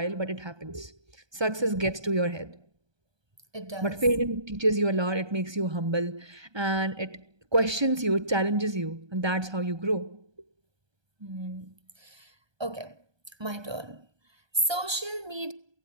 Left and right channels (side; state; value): left; late; 1.2 ms